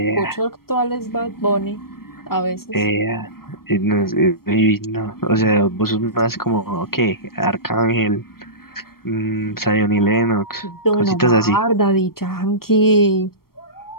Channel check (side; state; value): right; late; 0.94 ms